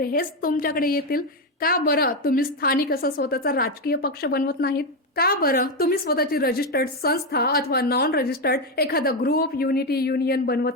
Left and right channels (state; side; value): normal; both; correlation 0.08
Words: हेच तुमच्याकडे येतील? का बरं तुम्ही स्थानिक असा स्वतःचा राजकीय पक्ष बनवत नाहीत? का बरं तुम्ही स्वतःची रजिस्टर्ड संस्था अथवा नॉन रजिस्टर्ड एखादा ग्रुप युनिटी युनियन